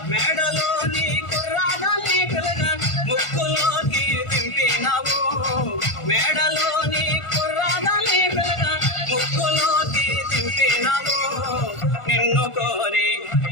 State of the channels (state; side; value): late; right; 1.5 ms